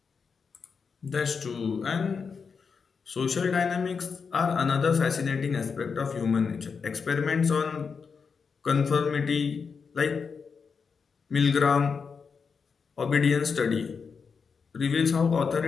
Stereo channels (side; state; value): right; quieter; 5.6 dB